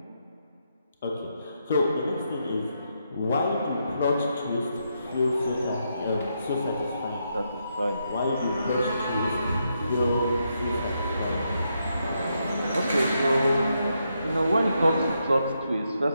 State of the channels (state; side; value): inverted; both; correlation -0.81